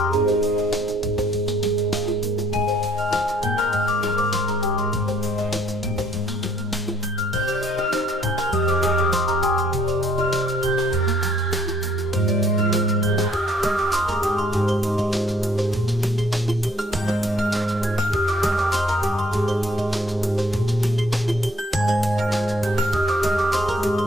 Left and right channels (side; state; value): both; normal; correlation 0.64